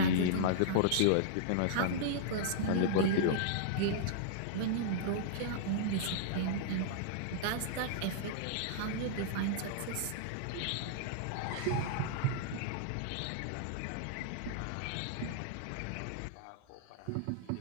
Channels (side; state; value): both; different; correlation -0.02